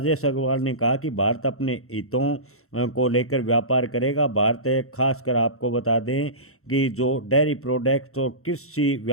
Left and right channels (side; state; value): right; late; 0.63 ms